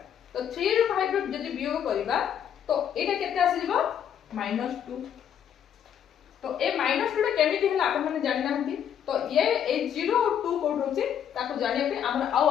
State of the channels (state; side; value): quieter; right; 9.1 dB